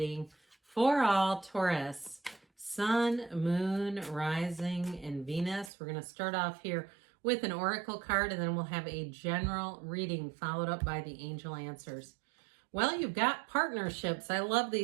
for all Taurus, Sun, Moon, Rising, and Venus. We're going to start off here with an oracle card and then we'll have a general reading followed up by the angel answers. Well, you've got partnerships. I love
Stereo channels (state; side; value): drops out; left; at 5.7 s